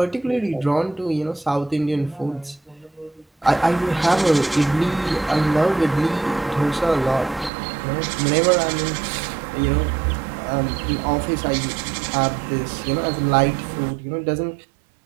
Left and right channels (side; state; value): left; drops out; at 7.5 s